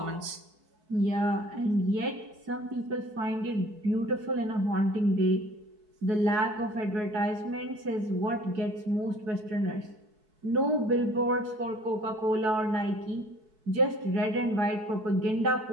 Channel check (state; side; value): late; left; 4.6 ms